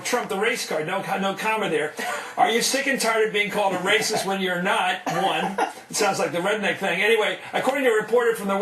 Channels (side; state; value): both; identical; correlation 1.00